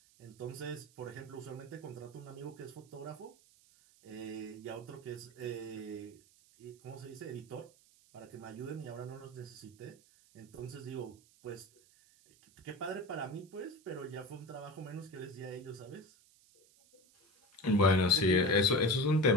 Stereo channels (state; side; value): noise; right; hiss, 28 dB below the sound